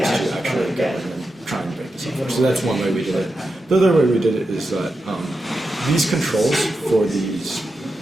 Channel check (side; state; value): both; normal; correlation 0.89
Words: actually go in and try and break the software. So that's one way we did it. The other way we did it is that these controls for these